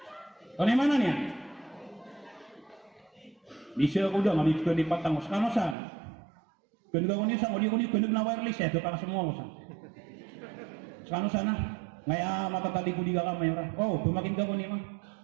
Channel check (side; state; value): left; drops out; at 5.8 s